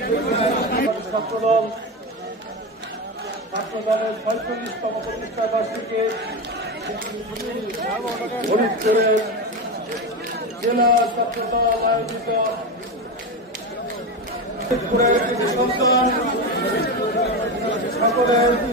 ছাত্রদলের ৪৫তম প্রতিষ্ঠা বার্ষিকী ফরিদপুরের জেলা ছাত্রদল আয়োজিত ফরিদপুরের সন্তান সকলের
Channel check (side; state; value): both; normal; correlation 0.18